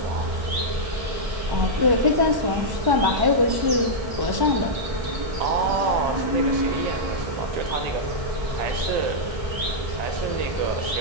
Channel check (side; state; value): left; late; 1.1 ms